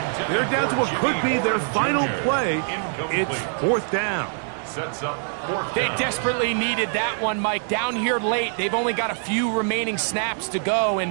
They're down to what could be their final play. It's fourth down. Sets up fourth They down. desperately needed that one, Mike. Down here late, they've only got a few remaining snaps to go,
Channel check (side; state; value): left; silent; 59 dB below the other